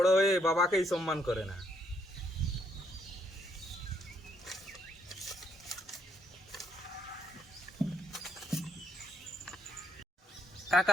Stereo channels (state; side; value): normal; both; correlation 0.73